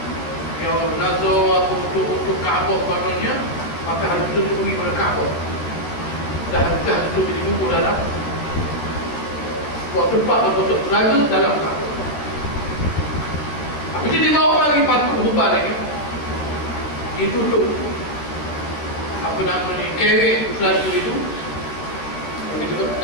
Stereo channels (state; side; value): late; right; 14 ms